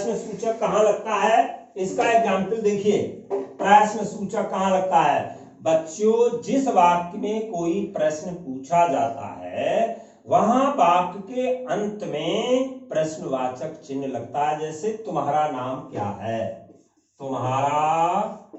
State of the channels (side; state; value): both; identical; correlation 1.00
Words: सूचक कहाँ लगता है, इसका एग्जाम्पल देखिए। प्रश्न सूचक कहाँ लगता है बच्चों, जिस वाक्य में कोई प्रश्न पूछा जाता है वहां वाक्य के अंत में प्रश्नवाचक चिन्ह लगता है। जैसे तुम्हारा नाम क्या है, तुम्हारा